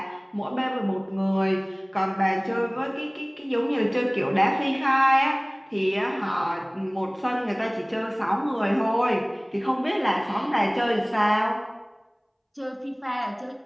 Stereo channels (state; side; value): identical; both; correlation 1.00